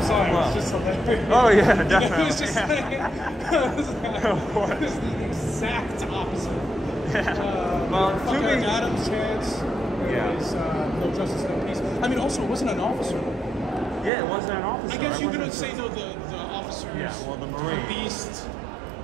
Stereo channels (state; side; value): drops out; left; at 14.1 s